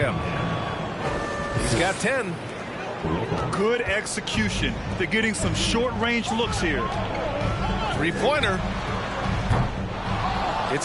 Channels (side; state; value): both; identical; correlation 1.00